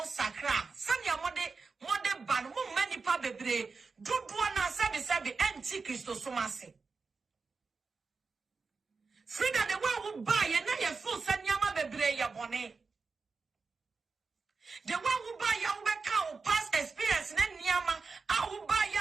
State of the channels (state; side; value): quieter; left; 4.5 dB